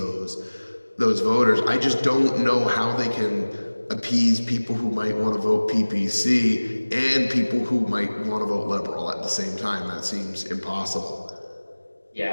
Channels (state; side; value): inverted; both; correlation -1.00